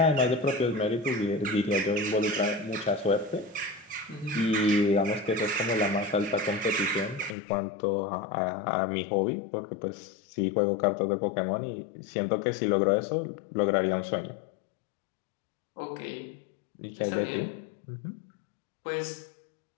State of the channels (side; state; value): right; drops out; at 7.4 s